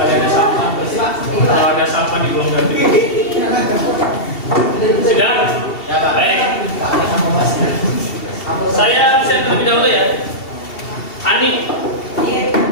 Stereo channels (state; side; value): late; right; 2.7 ms